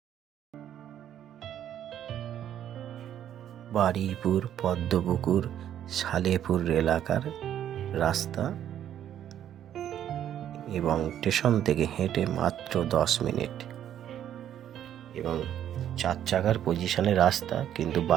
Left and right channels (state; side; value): quieter; left; 10.6 dB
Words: বারুইপুর পদ্মপুকুর সালেপুর এলাকার রাস্তা এবং স্টেশন থেকে হেঁটে মাত্র 10 মিনিট এবং 4 চাকার পজিশনে রাস্তা, কিন্তু